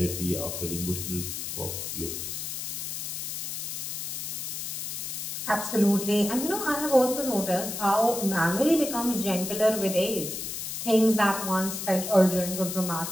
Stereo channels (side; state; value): left; noise; hiss, 5 dB below the sound